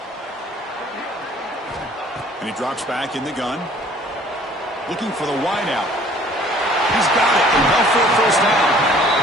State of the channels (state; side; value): normal; both; correlation 0.54